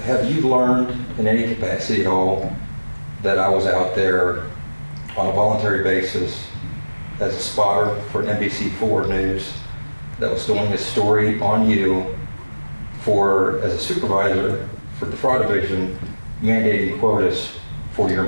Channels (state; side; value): inverted; both; correlation -1.00